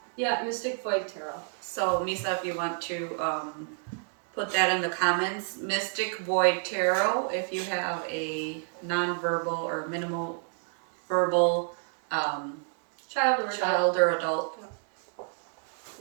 Mystic Void Tarot. So Misa, if you want to put that in the comments, Mystic Void Tarot. If you have a non-verbal or minimal verbal child or adult,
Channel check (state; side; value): silent; left; 58 dB below the other